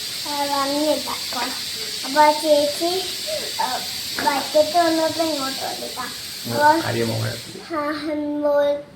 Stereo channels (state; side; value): identical; both; correlation 1.00